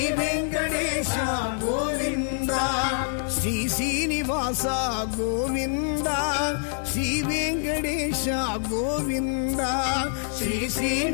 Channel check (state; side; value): silent; right; 61 dB below the other